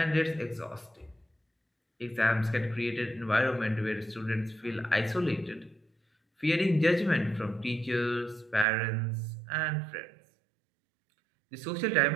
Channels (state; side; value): drops out; left; at 8.7 s